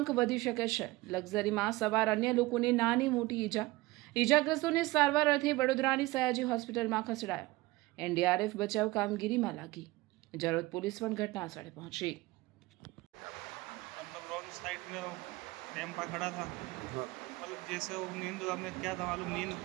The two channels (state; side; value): quieter; left; 20.4 dB